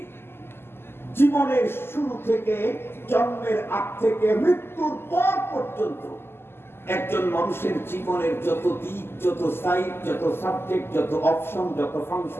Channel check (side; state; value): right; late; 0.12 ms